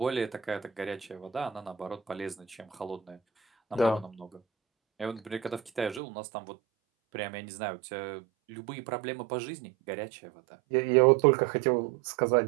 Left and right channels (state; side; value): drops out; left; at 6.0 s